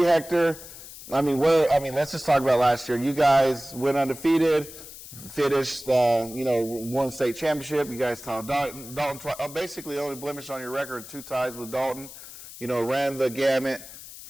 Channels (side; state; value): left; noise; hiss, 15 dB below the sound